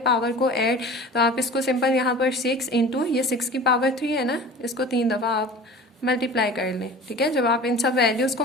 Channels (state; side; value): normal; both; correlation 0.39